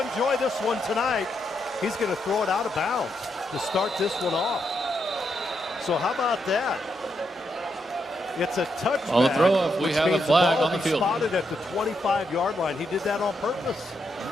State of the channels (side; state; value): both; normal; correlation 0.81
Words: this one tonight. He's going to throw it out of bounds to start this one off. So how about that? It's a touchback. On the throw-off, we have a flag on the field. Spotted at the 25-yard line. He did that on purpose.